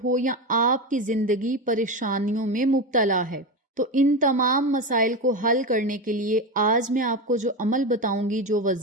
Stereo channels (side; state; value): both; normal; correlation 0.18